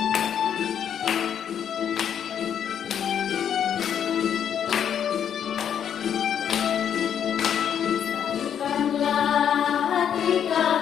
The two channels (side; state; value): right; quieter; 8.8 dB